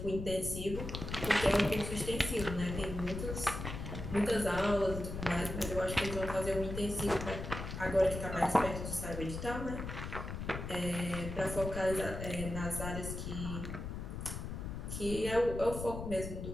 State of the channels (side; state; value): left; noise; rumble, 6 dB below the sound